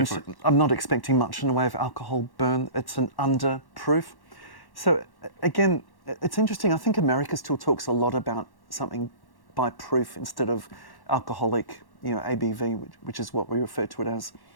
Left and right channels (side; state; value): right; late; 1.1 ms